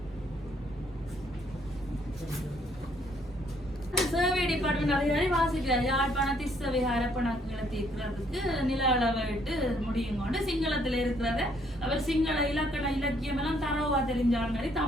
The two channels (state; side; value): normal; both; correlation 0.67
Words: சர்வே டிபார்ட்மெண்ட் அதிகாரி வாசிக்கிறார், யாழ்ப்பாண திசைவிகார கணக்குகளை தீர்க்கிறதுக்கு நில அளவிட்டு முடியும் கொண்டு சிங்களத்துல இருக்கிறத அவர் சிங்கள இலக்கண இலக்கியம் எல்லாம் தரவா தெரிஞ்சாலும் மாதிரி